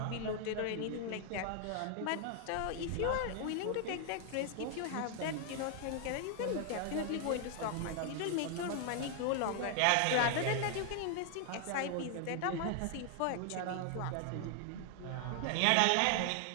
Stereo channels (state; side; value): different; both; correlation 0.00